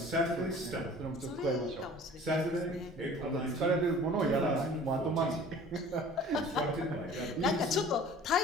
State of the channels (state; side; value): normal; both; correlation 0.46